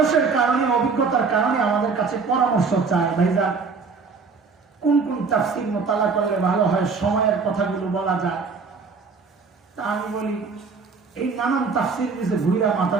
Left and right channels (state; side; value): quieter; left; 4.8 dB